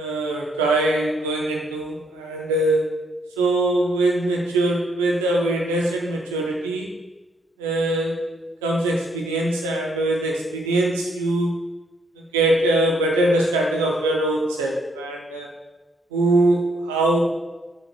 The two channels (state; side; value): normal; both; correlation 0.71